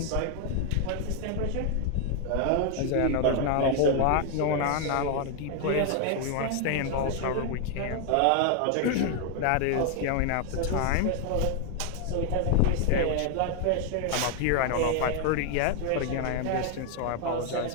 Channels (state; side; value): different; both; correlation 0.00